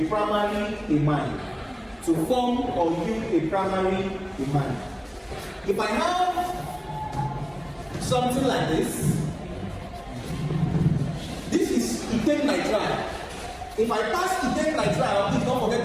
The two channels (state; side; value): identical; both; correlation 1.00